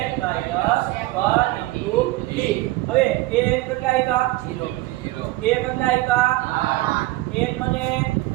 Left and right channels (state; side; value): quieter; left; 18.8 dB